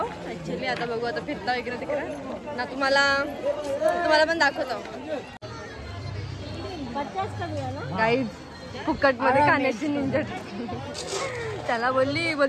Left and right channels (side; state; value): both; identical; correlation 1.00